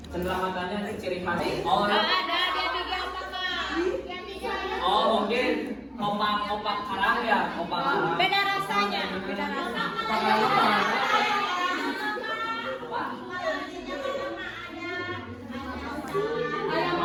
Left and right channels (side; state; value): both; identical; correlation 1.00